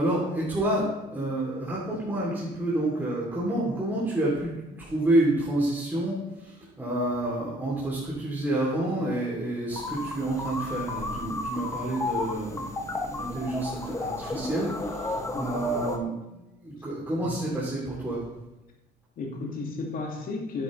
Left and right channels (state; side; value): normal; both; correlation 0.58